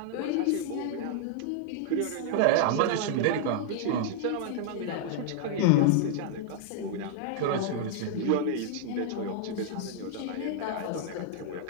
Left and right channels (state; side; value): different; both; correlation -0.01